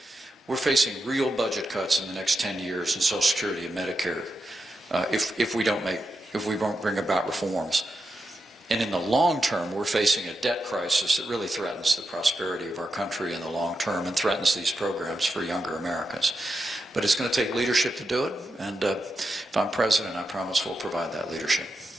we're facing real budget cuts in the next 10 years in Social Security and Medicare if we won't bring about reforms. And in the long term, we're facing a debt crisis that really threatens the prosperity of our country in the long term and threatens these programs for younger Americans. But it's going to take leadership to do it, and if I'm president, I promise we'll provide that leadership.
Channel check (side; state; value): both; normal; correlation 0.87